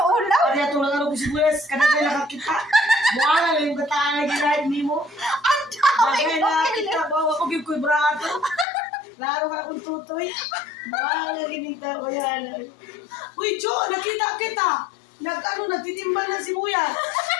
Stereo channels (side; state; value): right; drops out; at 8.7 s